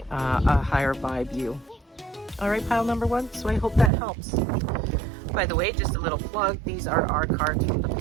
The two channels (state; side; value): drops out; left; at 3.9 s